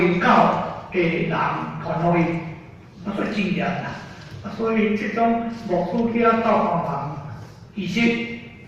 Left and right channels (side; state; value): both; identical; correlation 1.00